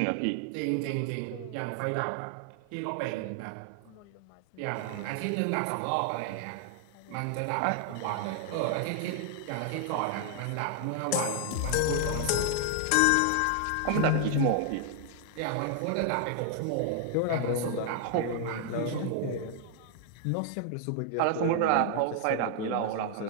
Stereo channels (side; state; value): both; different; correlation 0.00